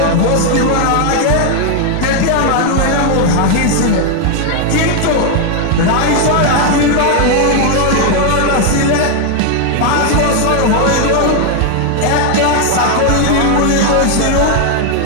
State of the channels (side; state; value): both; different; correlation 0.00